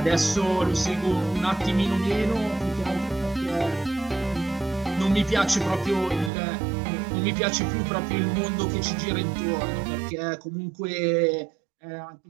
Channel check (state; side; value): drops out; left; at 6.3 s